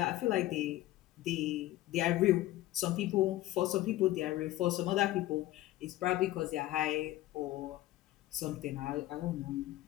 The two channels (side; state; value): right; quieter; 15.8 dB